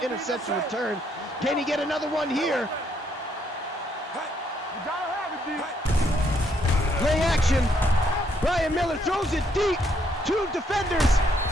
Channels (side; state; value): both; normal; correlation 0.72